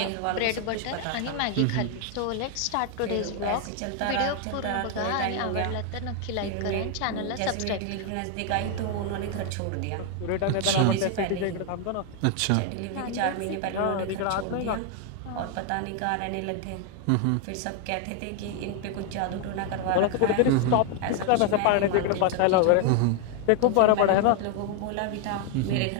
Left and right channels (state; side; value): different; both; correlation 0.01